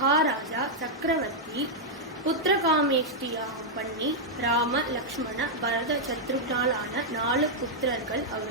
சக்கரவர்த்தி புத்திரகாமேஷ்டியாகம் பண்ணி ராம லக்ஷ்மண பரத சத்ருக்னாலான 4 புத்திரர்கள்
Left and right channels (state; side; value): normal; both; correlation -0.05